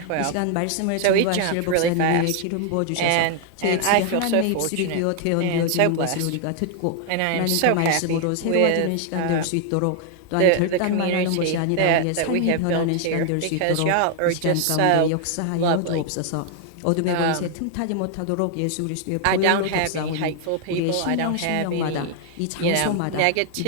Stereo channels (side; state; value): both; different; correlation 0.00